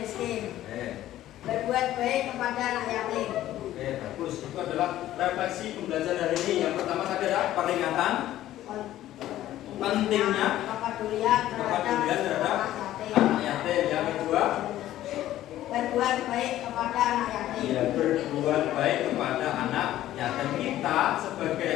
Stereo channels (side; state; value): right; quieter; 13.7 dB